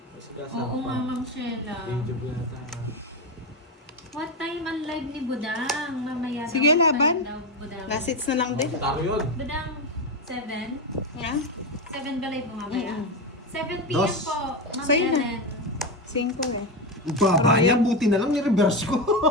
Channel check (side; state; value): both; normal; correlation 0.14